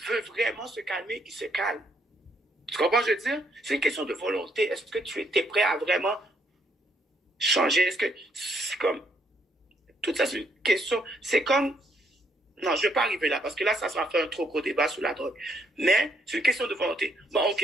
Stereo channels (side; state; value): both; normal; correlation 0.71